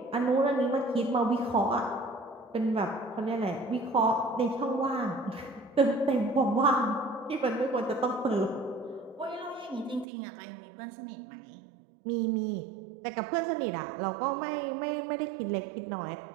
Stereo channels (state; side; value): drops out; left; at 10.1 s